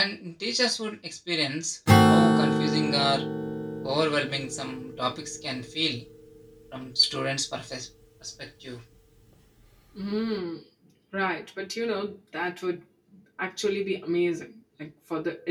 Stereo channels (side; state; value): both; identical; correlation 1.00